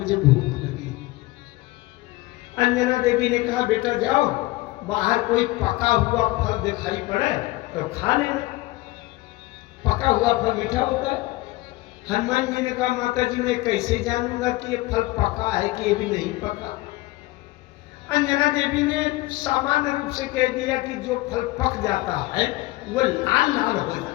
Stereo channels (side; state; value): right; quieter; 20.1 dB